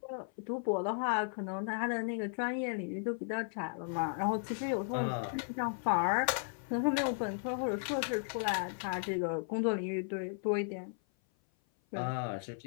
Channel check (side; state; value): right; silent; 54 dB below the other